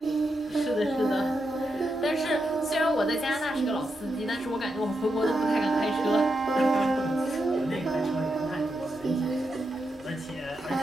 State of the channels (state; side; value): normal; both; correlation 0.85